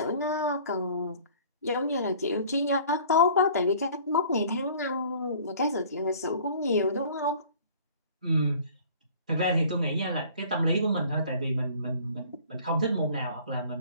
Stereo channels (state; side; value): inverted; both; correlation -0.50